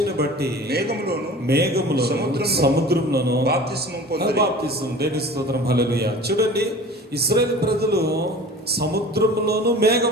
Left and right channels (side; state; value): both; normal; correlation 0.41